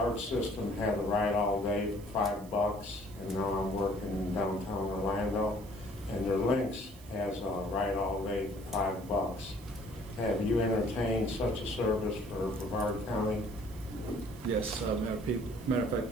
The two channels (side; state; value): right; noise; hiss, 22 dB below the sound